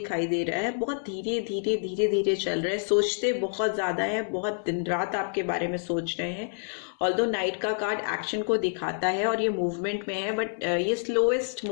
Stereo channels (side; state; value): right; silent; digital silence